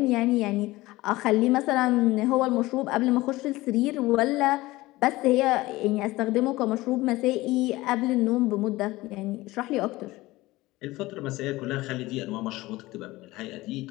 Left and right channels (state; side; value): quieter; right; 19.2 dB